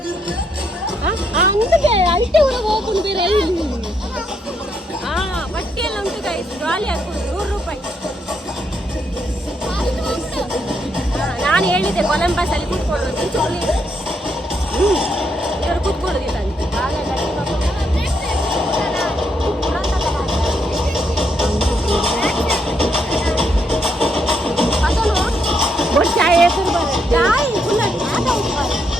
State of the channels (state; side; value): normal; both; correlation 0.76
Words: ಅಂದಕ್ಕೆ ಅಲ್ಟೆ ಊರಿಗೆ ಹೋಗ್ಕೊಂಡು ಬೇರೆ ಬಟ್ಟೆ ಎಲ್ಲ ಉಂಟು ಗೈಸ್ ಜಾಲಿ ಹಾಕೊಂಡು 100 ರೂಪಾಯಿ. ನಾನು ಹೇಳಿದ್ದೆ ಕೊಲಂಬಸ್ ಅಲ್ಲಿ ಕೂತ್ಕೊಳ್ಳೋದು ಇವರು ಕೂತ್ಕೊಳ್ಳೋದಿಲ್ಲ ಅಂತ